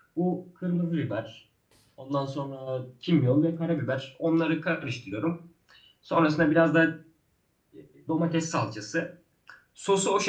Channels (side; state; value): both; identical; correlation 1.00